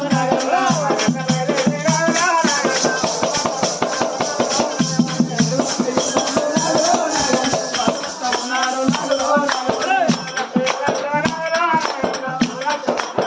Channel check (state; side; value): identical; both; correlation 1.00